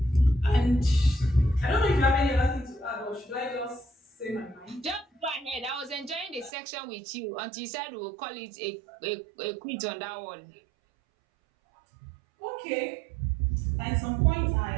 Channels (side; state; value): left; drops out; at 6.5 s